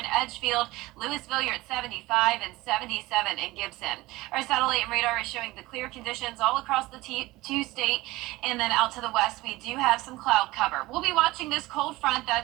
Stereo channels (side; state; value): left; quieter; 19.5 dB